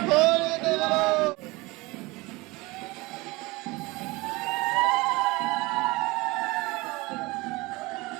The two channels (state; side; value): quieter; left; 23.1 dB